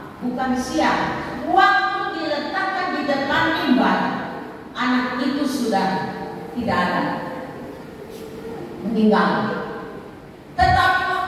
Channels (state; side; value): identical; both; correlation 1.00